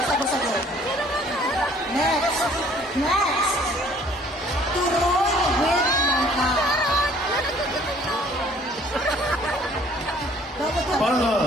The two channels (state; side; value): normal; both; correlation 0.57